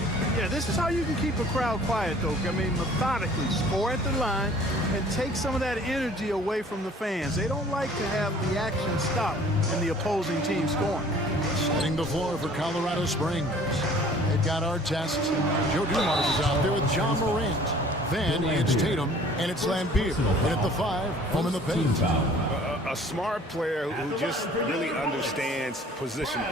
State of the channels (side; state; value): both; normal; correlation 0.52